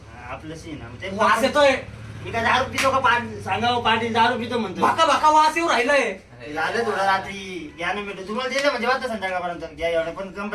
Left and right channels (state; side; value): identical; both; correlation 1.00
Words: आपलंशी आहे ना, ते वास येतोय. मी काय दारू पितो का? सांगा हो, पाटील दारू पितो म्हणतो. भाका भाका वास येऊ राहिलाय. झालं थोडं रात्री घ्या ना भेटू. तुम्हाला दिलं म्हणजे वाटतं संध्याकाळपर्यंत घ्या एवढं, पण